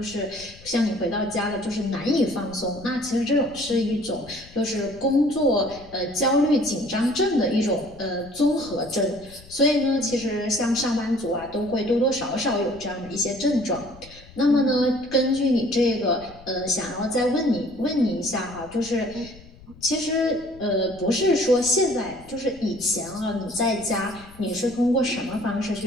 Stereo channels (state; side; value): noise; left; rumble, 21 dB below the sound